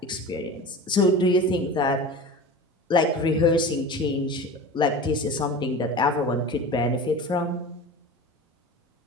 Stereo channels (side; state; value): both; normal; correlation 0.33